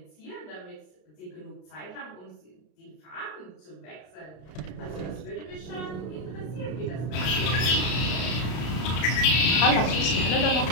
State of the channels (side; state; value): right; late; 33 ms